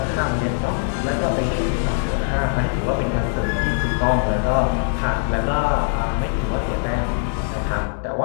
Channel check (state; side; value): silent; right; digital silence